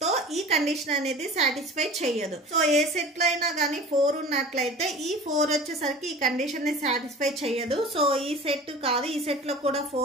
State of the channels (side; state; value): both; normal; correlation 0.39